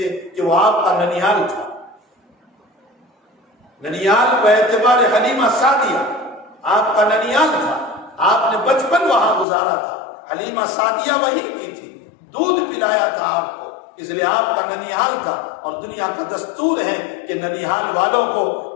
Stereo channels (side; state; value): right; drops out; at 9.5 s